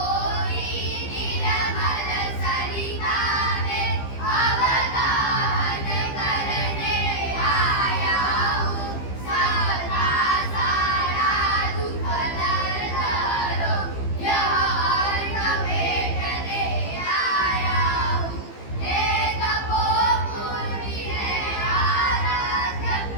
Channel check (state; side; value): late; right; 15 ms